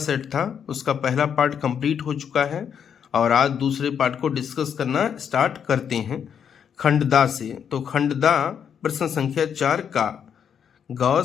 था उसका पहला पार्ट कंप्लीट हो चुका है और आज दूसरे पार्ट को डिस्कस करना स्टार्ट करते हैं खंडदा से। तो खंडदा प्रश्न संख्या 4 का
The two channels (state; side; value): quieter; right; 7.8 dB